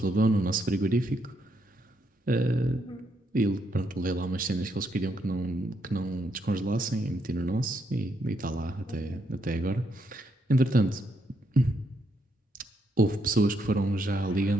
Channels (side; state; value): both; normal; correlation 0.77